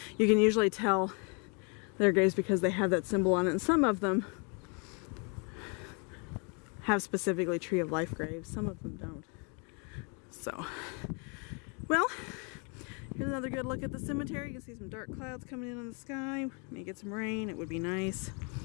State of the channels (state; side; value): quieter; right; 35.6 dB